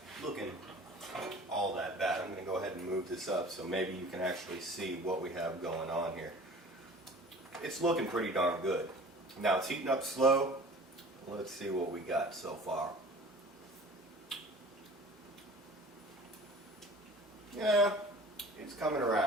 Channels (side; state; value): both; normal; correlation 0.44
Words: looking all that bad. I'm going to go ahead and move this up so maybe you can actually see what we have going on here. It's looking pretty darn good. Now it's heating up slow. Let's see what we got so far. Yeah, it's coming